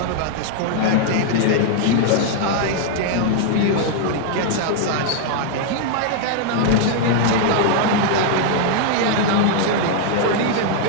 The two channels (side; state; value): both; different; correlation 0.00